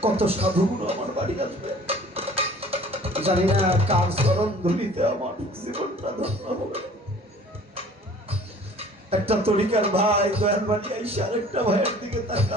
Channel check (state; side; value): normal; both; correlation 0.49